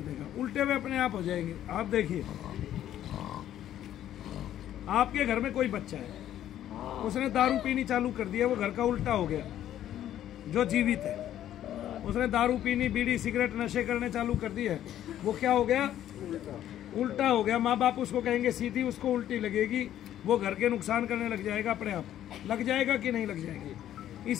उल्टे हुए अपने आप हो जाएंगे। आप देखिए, आपके घर में कोई बच्चा है, उसने दारू पीनी चालू कर दिया, वो घर का उल्टा हो गया। जो जीवित है, उसने दारू पीनी, बीड़ी सिगरेट नशे करने चालू कर दिए, वो क्या हो गया, उल्टा हो गया। माँ बाप उसको कहेंगे सीधी, उसको उल्टी लगेगी, वो घर के नुकसान करने लग जाएगा, अपने आप लग जाएगा कि नहीं लग जाएगी।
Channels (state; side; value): quieter; right; 11.7 dB